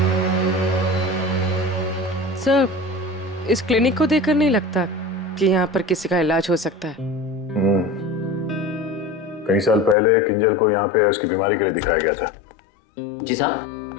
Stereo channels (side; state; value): right; drops out; at 10.0 s